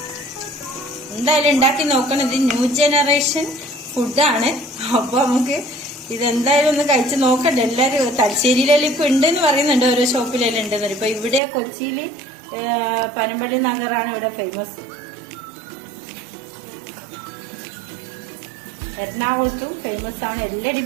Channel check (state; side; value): drops out; left; at 11.4 s